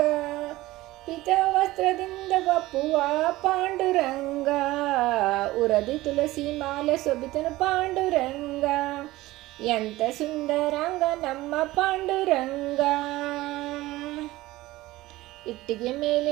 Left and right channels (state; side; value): quieter; left; 18.1 dB